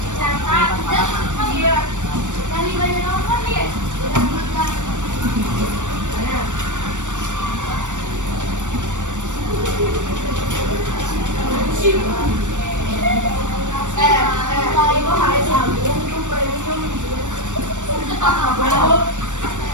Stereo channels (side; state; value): left; late; 0.85 ms